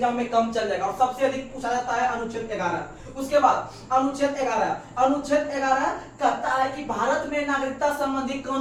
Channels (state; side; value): identical; both; correlation 1.00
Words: में कम चल जाएगा। और सबसे अधिक पूछा जाता है अनुच्छेद 11। उसके बाद अनुच्छेद 11 कहता है कि भारत में नागरिकता संबंधी